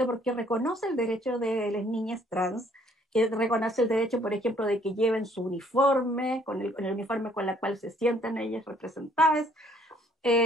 porque reconoce el derecho de las niñas trans, que reconoce el derecho, por ejemplo, de que lleven su uniforme, con el uniforme con el cual se sientan ellas representadas.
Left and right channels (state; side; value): normal; both; correlation 0.62